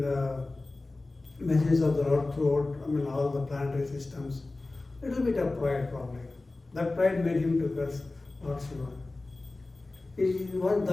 the message of the Lord throughout, all the planetary systems. Little bit of pride probably. That pride made him to curse Lord Shiva.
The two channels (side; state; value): right; quieter; 3.2 dB